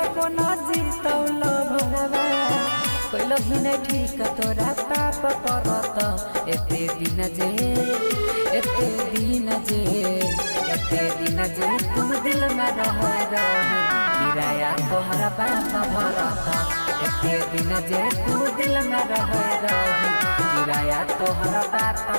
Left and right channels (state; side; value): inverted; both; correlation -1.00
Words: कोना जीतौल भरवा कइल ही नहीं ठीक तोरा पाप परत एते दिन जे तुम दिल में रह किराया तोहरा पाप भरत एते दिन जे तुम दिल में रह किराया तोहरा पाप